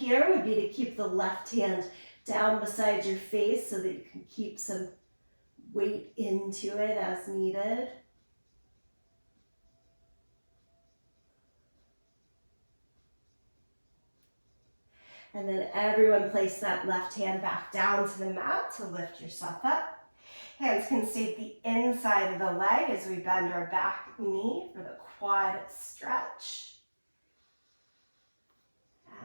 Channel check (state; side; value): inverted; both; correlation -1.00